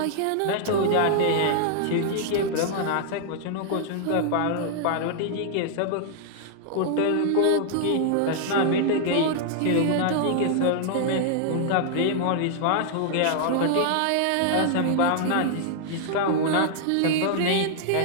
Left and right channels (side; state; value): both; different; correlation -0.01